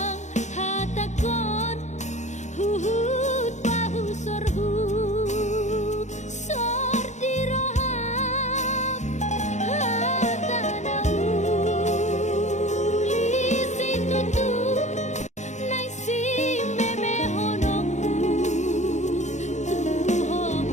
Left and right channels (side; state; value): right; late; 0.34 ms